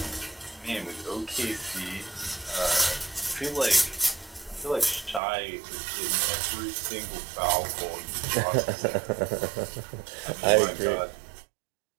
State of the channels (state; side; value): drops out; left; at 5.2 s